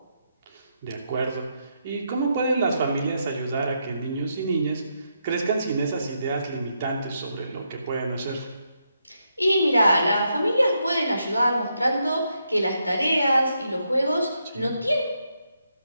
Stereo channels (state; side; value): inverted; both; correlation -0.81